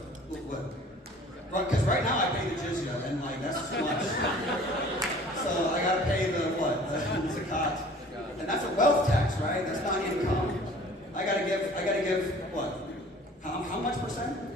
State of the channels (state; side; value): normal; both; correlation 0.48